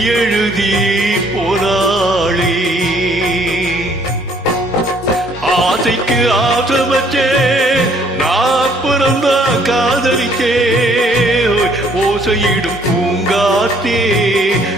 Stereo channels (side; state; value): both; normal; correlation 0.62